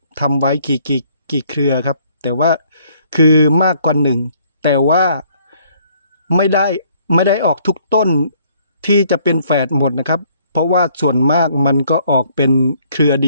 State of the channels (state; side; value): inverted; both; correlation -0.63